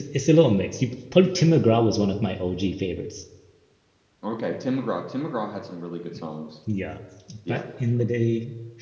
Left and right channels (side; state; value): both; identical; correlation 1.00